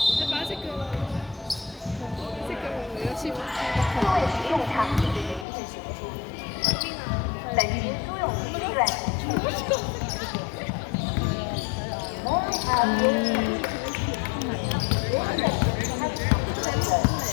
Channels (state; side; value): drops out; right; at 5.5 s